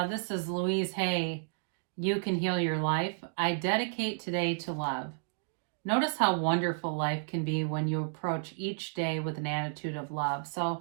this is Louise Hay. You can heal your life. I dedicate today to love. Notice how wonderful life can be when you approach each day with an attitude of love.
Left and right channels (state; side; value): silent; left; digital silence